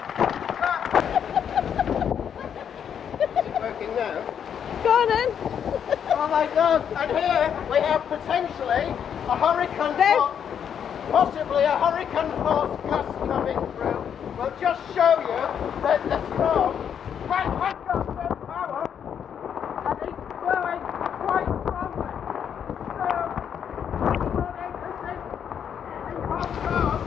Working now. Go on then. Oh my God! And here we have potentially a hurricane force, possibly a hurricane force gust coming through. We'll just show you that the storm has got some power and it's blowing quite strongly. So, what I can say in Hong Kong,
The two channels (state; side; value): quieter; right; 8.3 dB